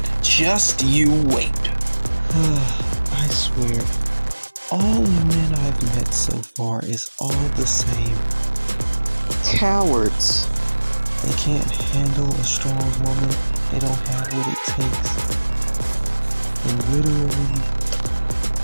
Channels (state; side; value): inverted; both; correlation -1.00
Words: Just you wait. I swear, all the men I've met so far is all the same. Cowards. They can't handle a strong woman. They don't have what it takes. And literally,